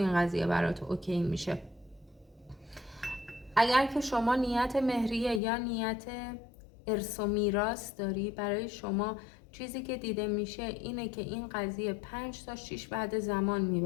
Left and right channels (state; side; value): drops out; right; at 5.4 s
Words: قضیه برات اوکی میشه. اگر که شما نیت مهریه یا نیت ارث و میراث داری، برای شما چیزی که دیده میشه اینه که این قضیه 5 تا 6 بعد زمان